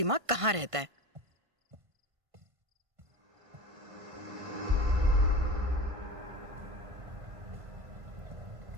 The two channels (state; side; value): late; left; 1.5 ms